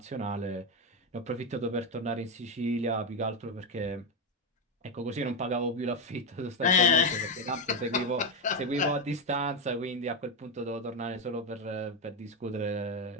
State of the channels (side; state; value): both; normal; correlation 0.09